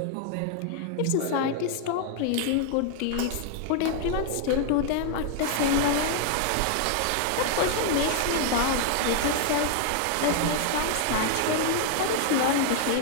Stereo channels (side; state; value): both; different; correlation 0.00